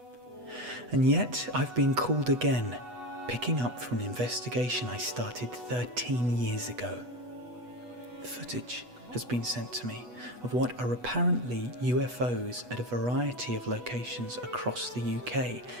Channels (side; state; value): left; late; 8.2 ms